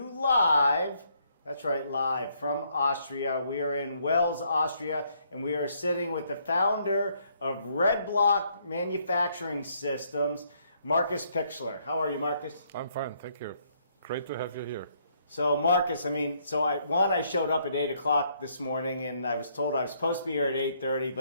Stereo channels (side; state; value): both; inverted; correlation -0.70